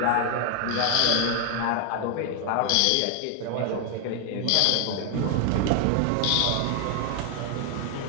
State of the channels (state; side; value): different; both; correlation 0.01